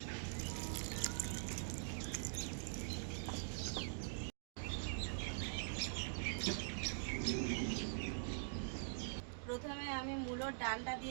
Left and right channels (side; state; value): left; silent; digital silence